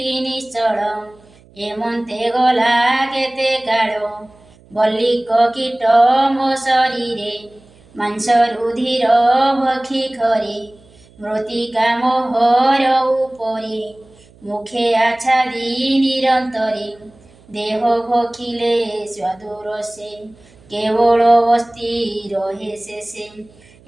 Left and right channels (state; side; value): noise; right; hum, 27 dB below the sound